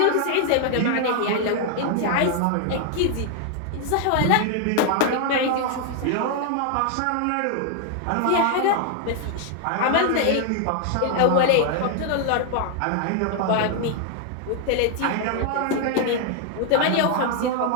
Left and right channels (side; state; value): both; different; correlation 0.00